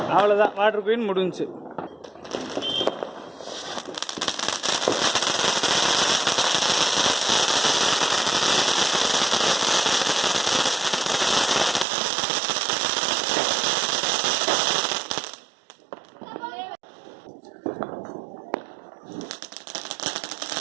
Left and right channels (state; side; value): drops out; left; at 11.9 s